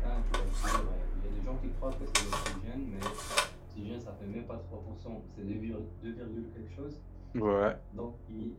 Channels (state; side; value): identical; both; correlation 1.00